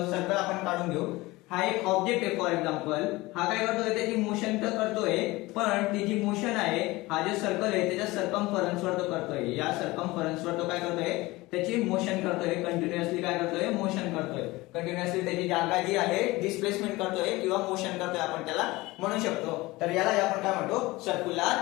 सर्कल आपण काढून घेऊ. हा एक ऑब्जेक्ट आहे. फॉर एक्झाम्पल हा काय करतोय, त्याची मोशन तर करतोय पण ती जी मोशन आहे, हा जे सर्कल आहे त्याच्या सर्कम्फरन्स वर तो करतोय. या सर्कम्फरन्स वर तो काय करतोय, त्याची मोशन करतोय. कंटिन्युअसली काय करतोय, मोशन करतोय. कंटिन्युअसली त्याची जागा जी आहे डिस्प्लेसमेंट करतोय किंवा मोशन करतोय, आपण त्याला म्हणू शकतो. तर याला आपण काय म्हणतो,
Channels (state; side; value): quieter; right; 20.7 dB